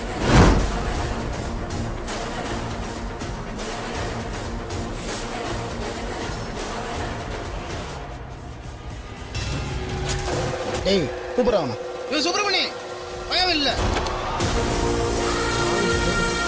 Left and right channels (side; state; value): both; identical; correlation 1.00